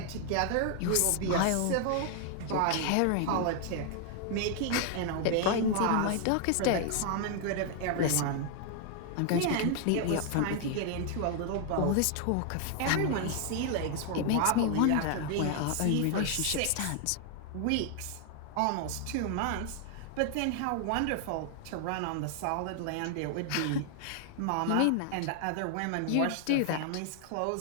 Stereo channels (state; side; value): different; both; correlation 0.00